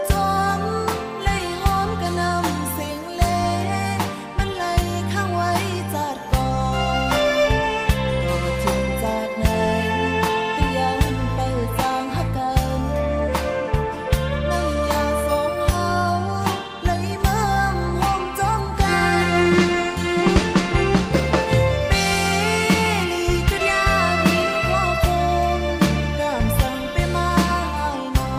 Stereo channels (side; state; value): both; identical; correlation 1.00